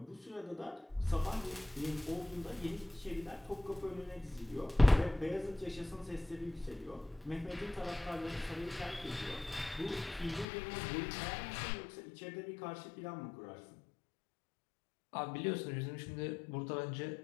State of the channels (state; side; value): drops out; right; at 10.5 s